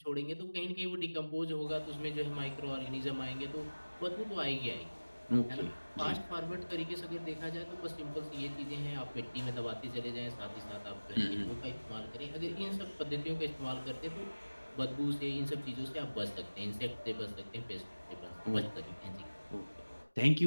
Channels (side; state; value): both; inverted; correlation -1.00